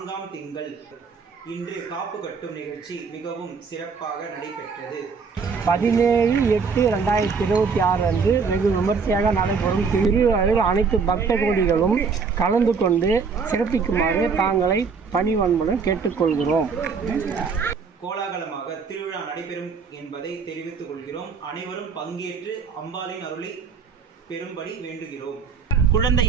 திங்கள் இன்று காப்பு கட்டும் நிகழ்ச்சி மிகவும் சிறப்பாக நடைபெற்றது. 17/8/2026 அன்று வெகு விமர்சையாக நடைபெறும் திருவிழாவில் அனைத்து பக்த கோடிகளும் கலந்து கொண்டு சிறப்பிக்குமாறு தாங்களை பணிவன்புடன் கேட்டுக்கொள்கிறோம். கோலாகலமாக திருவிழா நடைபெறும் என்பதை தெரிவித்துக் கொள்கிறோம். அனைவரும் பங்கேற்று அம்பாளின் அருளை பெறும்படி வேண்டுகிறோம். குழந்தை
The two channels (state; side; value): quieter; left; 5.4 dB